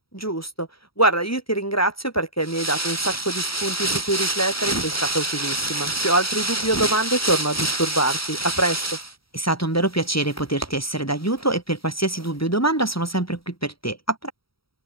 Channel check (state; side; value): late; right; 0.75 ms